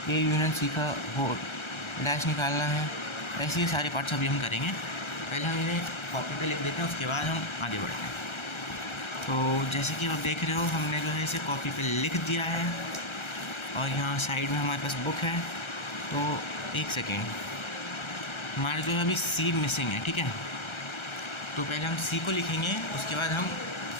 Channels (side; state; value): right; late; 1.3 ms